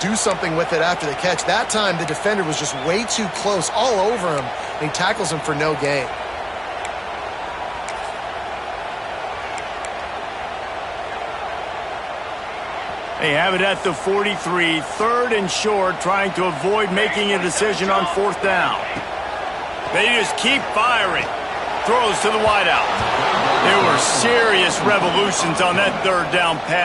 something with it after the catch. That time, the defender was just way too close, all over him, and he tackles him for no gain. They have it at the 43, 3rd and short, trying to avoid making a decision on 4th down. They just keep firing. Throws to the wideout. There were serious revolutions on that 3rd down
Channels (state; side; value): identical; both; correlation 1.00